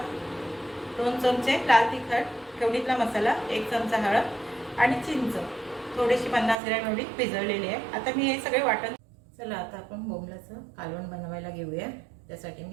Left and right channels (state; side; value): drops out; left; at 6.6 s